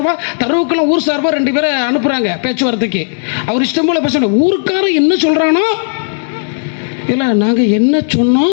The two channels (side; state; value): right; silent; 65 dB below the other